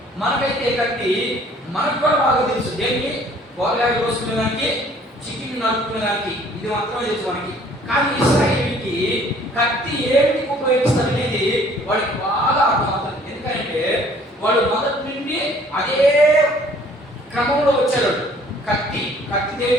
మనకైతే కత్తి మనకు కూడా బాగా తెలుసు. దేనికి? కూరగాయలు కోసుకునేదానికి, చికెన్ నరుకునేదానికి, ఇది మాత్రమే తెలుసు మనకి. కానీ ఇశ్రాయేలుకి కత్తి ఏమిటికి ఉపయోగిస్తారు అనేది వాడికి బాగా అర్థమవుతుంది. ఎందుకంటే వాడు మొదటి నుండి అదే క్రమంలో వచ్చాడు. కత్తి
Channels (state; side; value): normal; both; correlation 0.56